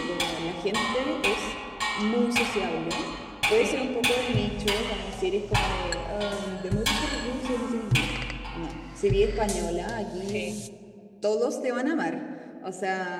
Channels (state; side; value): identical; both; correlation 1.00